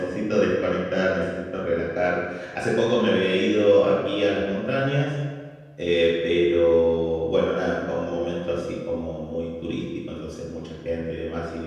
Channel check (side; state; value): both; identical; correlation 1.00